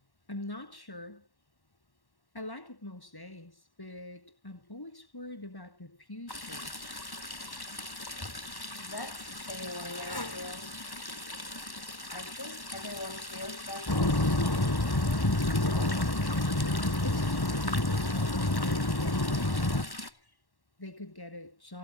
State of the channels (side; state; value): right; late; 1.1 ms